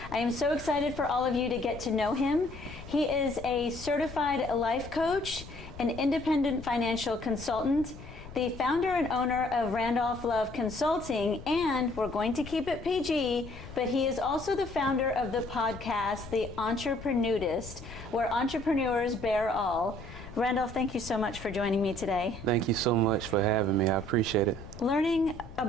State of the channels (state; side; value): noise; left; rumble, 14 dB below the sound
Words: I am so excited for all of you to get to know him. He is a certified life coach, an independent financial consultant, the founder and owner of Randolph Love Consulting, and we're going to keep it PG, but he is also the founder of the podcast, The Entreprenudist, where entrepreneurs bear all. Randolph, thank you so much for joining me today. Thank you so much for having me. I appreciate it. Learning